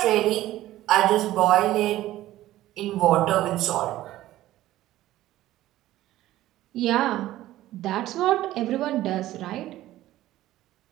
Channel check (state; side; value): quieter; left; 15.0 dB